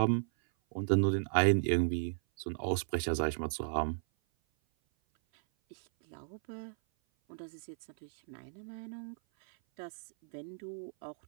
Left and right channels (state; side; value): silent; left; 55 dB below the other